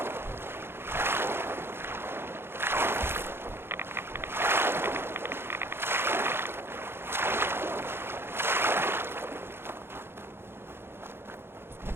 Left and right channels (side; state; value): left; late; 0.11 ms